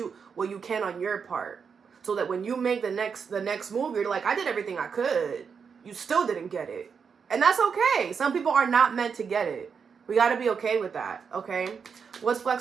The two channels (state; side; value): quieter; left; 6.2 dB